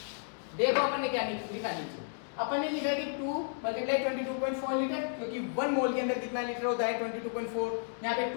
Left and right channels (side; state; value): right; silent; digital silence